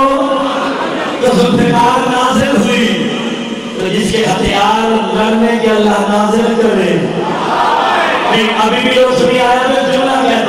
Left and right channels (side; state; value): both; identical; correlation 1.00